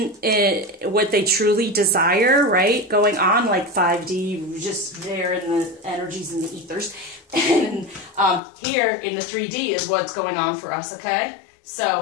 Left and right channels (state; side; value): drops out; right; at 8.4 s